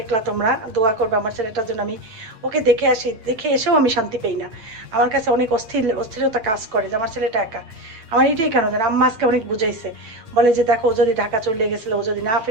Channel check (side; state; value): left; late; 8.8 ms